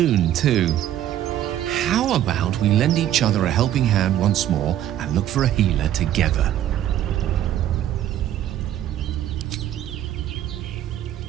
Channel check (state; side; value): quieter; left; 11.8 dB